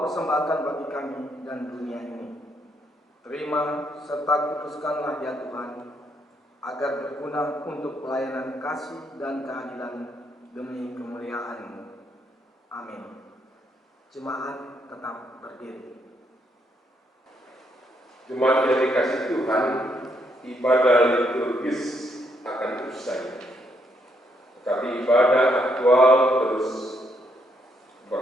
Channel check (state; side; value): normal; both; correlation 0.74